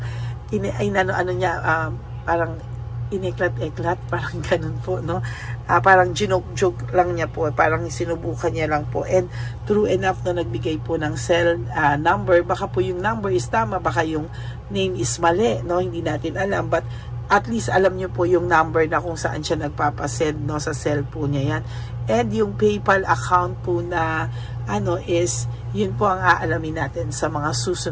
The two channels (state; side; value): identical; both; correlation 1.00